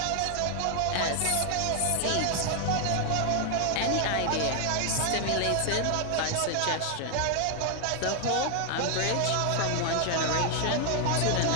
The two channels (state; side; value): different; both; correlation 0.00